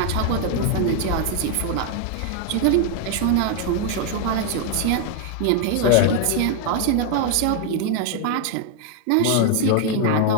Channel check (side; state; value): both; different; correlation 0.01